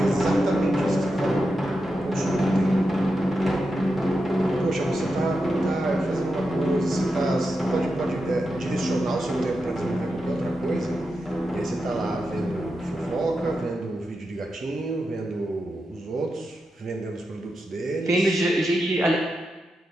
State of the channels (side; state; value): both; normal; correlation 0.88